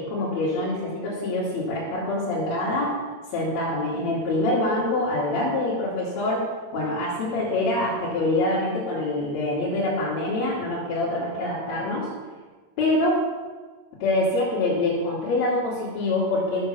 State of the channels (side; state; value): right; late; 8.7 ms